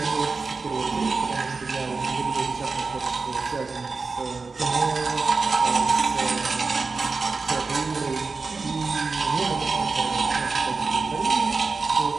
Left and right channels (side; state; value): left; quieter; 4.3 dB